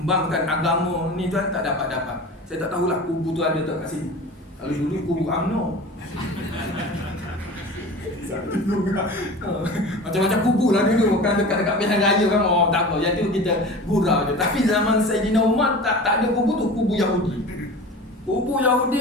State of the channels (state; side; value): normal; both; correlation 0.36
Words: agama ni tuan, tak dapat-dapat. Saya tak tahulah kubu tu ada tak kat sini. Kalau dulu kubu UMNO. Macam-macam kubu lah dulu. Kan dekat-dekat pilihan raya kan. Tak apa, yang tu kita gurau je. Tapi zaman Sayyidina Umar tak ada kubu tu, kubu Yahudi. Kubu Yahudi